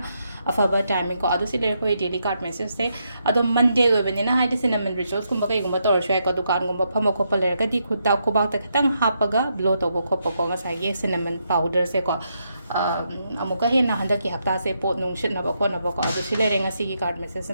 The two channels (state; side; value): inverted; both; correlation -0.80